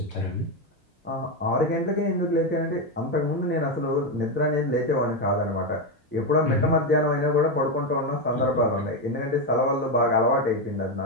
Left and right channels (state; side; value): normal; both; correlation 0.09